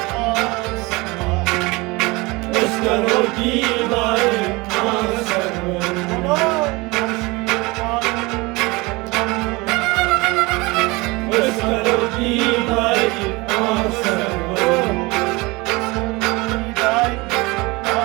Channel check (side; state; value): left; quieter; 24.1 dB